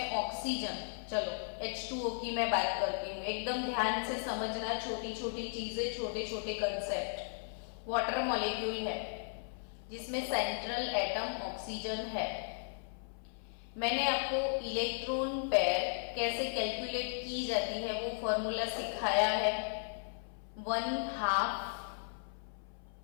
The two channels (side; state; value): right; silent; 54 dB below the other